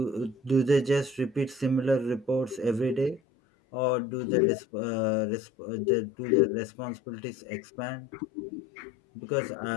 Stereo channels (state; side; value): drops out; right; at 3.2 s